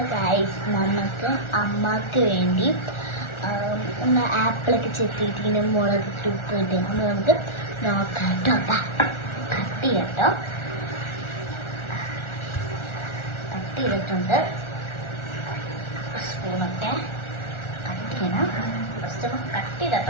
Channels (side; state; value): right; late; 1.4 ms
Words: guys, നമുക്ക് അമ്മക്ക് വേണ്ടി നമ്മൾ ആപ്പിളൊക്കെ ചെത്തിയിട്ടിങ്ങനെ മുളക് ഉപ്പിട്ട് നമുക്ക് നോക്കാം കേട്ടോ. കട്ട് ചെയ്യട്ടോ, കട്ട് ചെയ്തിട്ടുണ്ട്. സ്പൂണൊക്കെ കട്ട് ചെയ്യണം. ഫസ്റ്റ് നമുക്ക് കട്ട് ചെയ്തിട്ടോ